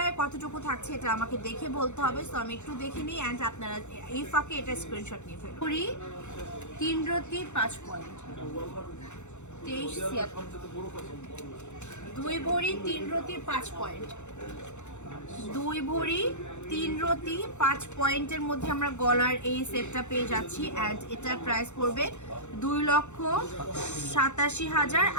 কতটুকু থাকছে এটা আমাকে দেখে বলতে হবে। সো আমি একটু দেখে নিই, অ্যান্ড আপনারা এই ফাঁকে এটা স্ক্রিনশট নিয়ে ফেলুন। 3 রতি 5 পয়েন্ট 23 2 ভরি 3 রতি 5 পয়েন্ট 2 ভরি 3 রতি 5 পয়েন্টের মধ্যে আমরা গলার এই সেটটা পেয়ে যাচ্ছি। অ্যান্ড এটার প্রাইস পড়বে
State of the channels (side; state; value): right; late; 0.83 ms